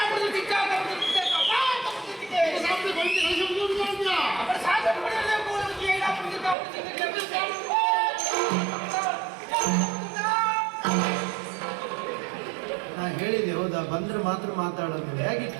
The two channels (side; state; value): left; drops out; at 6.6 s